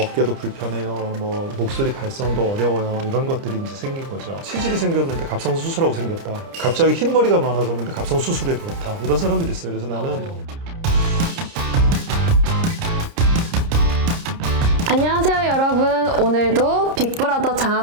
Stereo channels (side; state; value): left; late; 30 ms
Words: 어깨도 불편해요, 뭐 목소리 발성도 어려워요, 이런 것들이 이제 생긴 거죠. 치질이 생겼는데 갑상선 수술하고 생겼다. 갑자기 흰머리가 많아졌는데 갑상선 수술에 그렇다. 이런 사람들이 있어요. 그래서 나는 안녕하세요 여러분. 오늘도 빅브라더